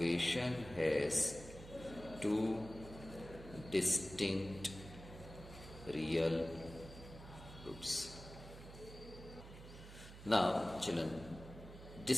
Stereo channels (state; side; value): noise; right; hum, 14 dB below the sound